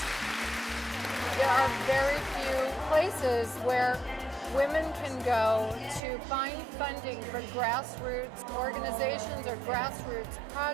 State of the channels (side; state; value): left; drops out; at 6.0 s